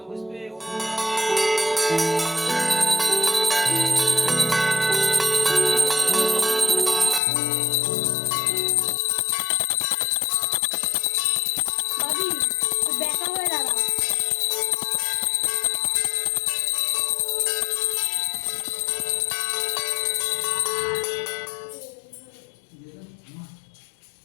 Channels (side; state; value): right; drops out; at 7.2 s